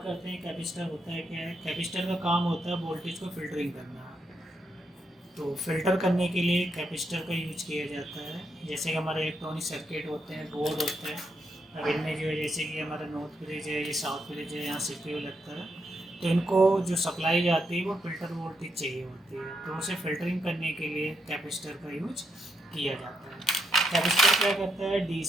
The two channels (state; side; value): normal; both; correlation 0.79